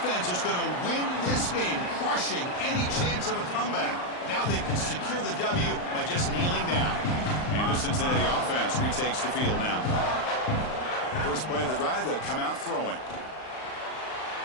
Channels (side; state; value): right; late; 39 ms